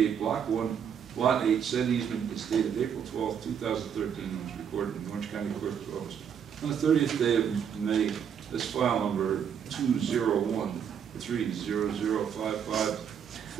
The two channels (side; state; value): left; quieter; 8.0 dB